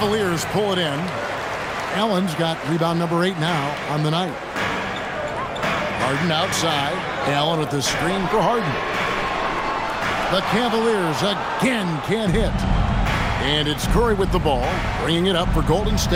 pull it in. Allen's got rebound number 8 now on the night. Harden outside. Allen with the screen for Harden. The Cavaliers again can't hit. And it's Curry with the ball, bringing it up for Golden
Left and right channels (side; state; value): both; identical; correlation 1.00